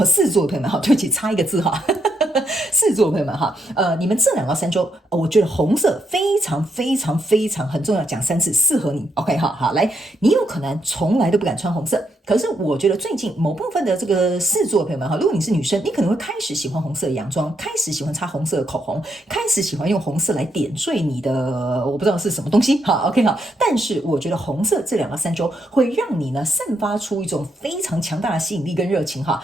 狮子座的朋友们，对不起，差一个字哈。狮子座的朋友们哈，你们这2到3周，我觉得红色非常很重要，讲3次，适合你。OK， 好，来，你有可能从来都不敢穿红色。可是我觉得最近某部分的这个狮子座的朋友们哈，如果你是女生，你可能会开始喜欢红色的洋装，开始喜欢擦红色的口红，开始喜欢用红色来点缀你的，我不知道是什么东西哈。OK 好，但是我觉得红色这2到3周会让你呢散发出一种非常强大的吸引力跟热情哈，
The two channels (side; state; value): both; normal; correlation 0.78